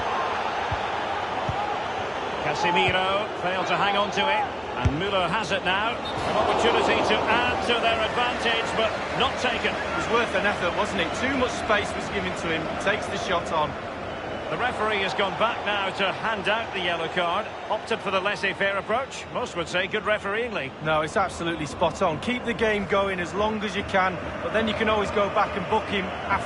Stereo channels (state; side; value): identical; both; correlation 1.00